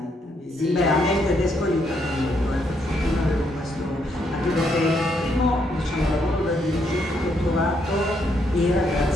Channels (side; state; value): both; normal; correlation 0.75